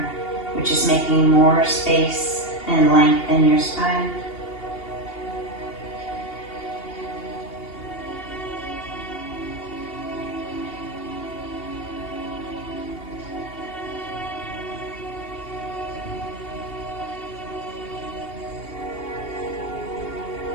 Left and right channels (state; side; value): late; right; 2.8 ms